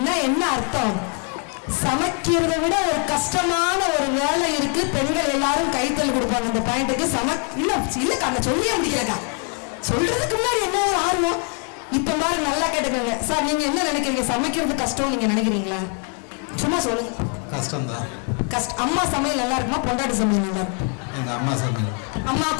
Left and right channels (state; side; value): quieter; right; 37.9 dB